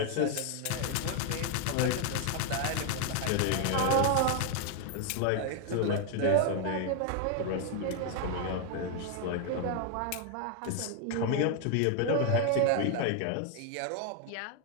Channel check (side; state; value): both; different; correlation 0.01